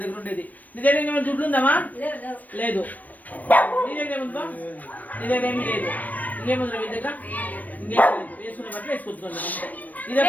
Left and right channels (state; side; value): late; right; 0.079 ms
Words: దగ్గర ఉండేది. నీ దగ్గర ఏమైనా దుడ్లు ఉందామా? లేదు. నీ దగ్గర ఏముందా? నీ దగ్గర ఏమీ లేదు. ఇంకేముందా మీ దగ్గర? ఇంకేం లేదు. వేసుకునే బట్టి వేసుకొచ్చుకోండి అంతే. ఇదే